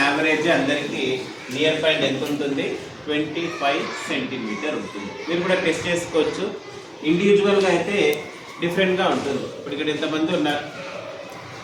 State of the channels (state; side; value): identical; both; correlation 1.00